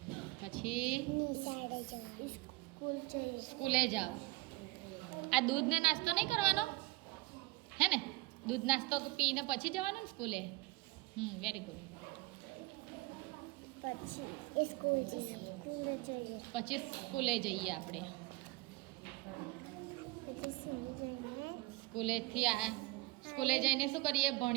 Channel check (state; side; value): quieter; left; 21.7 dB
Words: પછી સ્કૂલે જાઓ. આ દૂધ ને નાસ્તો નહીં કરવાનો હે ને? દૂધ નાસ્તો પીને પછી જવાનું ને સ્કૂલે. Very good. પછી સ્કૂલે જઈએ આપણે. સ્કૂલે જઈને શું કરીએ?